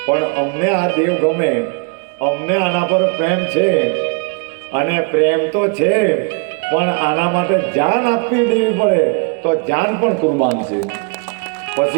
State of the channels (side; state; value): left; quieter; 34.5 dB